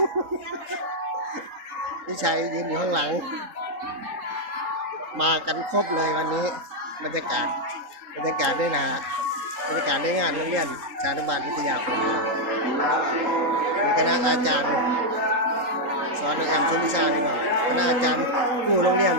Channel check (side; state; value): left; late; 3.8 ms